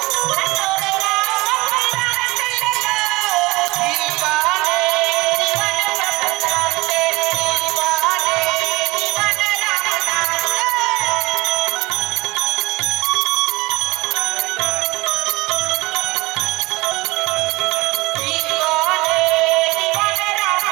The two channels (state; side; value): quieter; left; 22.5 dB